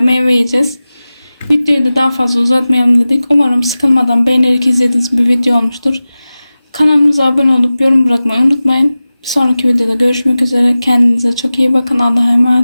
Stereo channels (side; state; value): both; inverted; correlation -0.96